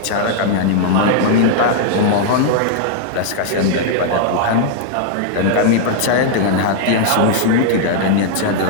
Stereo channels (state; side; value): different; both; correlation 0.00